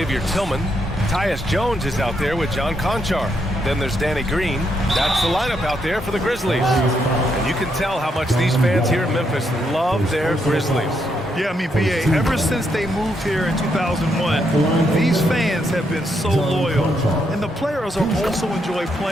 Tillman. Tyus Jones is out there with John Conchar. Then there's Danny Green. That's the lineup out there for the Grizzlies. And you can tell how much these fans here in Memphis love their Grizzlies. Yeah, I mean, B.A., ever since they moved here in 2001, these fans have been so loyal. And the players are also enjoy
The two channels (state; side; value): normal; both; correlation 0.78